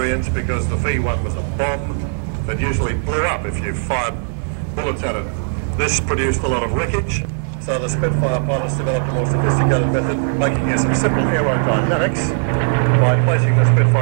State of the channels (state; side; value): silent; left; 64 dB below the other